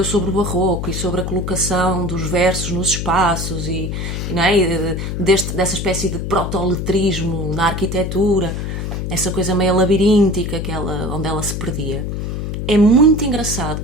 sobre o barroco e sobre a colocação dos versos nos espaços e não é? Dessa espécie de protoletrismo na arquitetura, essa coisa meio labiríntica onde ela se perdia, é muito engraçado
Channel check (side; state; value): left; noise; hum, 3 dB below the sound